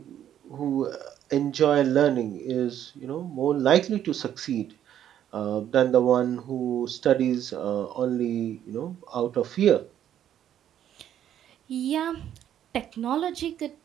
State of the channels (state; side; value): quieter; left; 10.6 dB